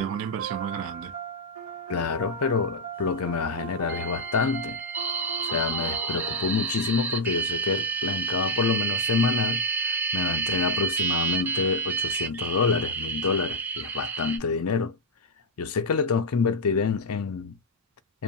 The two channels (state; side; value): normal; both; correlation -0.04